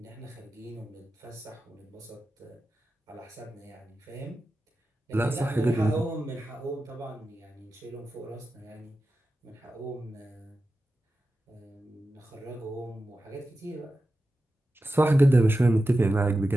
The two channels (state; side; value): normal; both; correlation 0.92